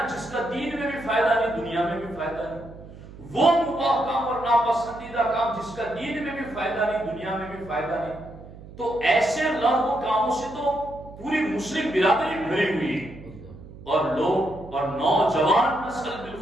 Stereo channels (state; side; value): noise; right; hum, 17 dB below the sound